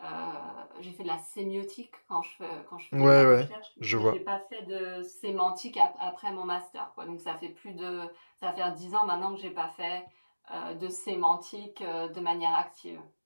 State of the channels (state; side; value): inverted; both; correlation -1.00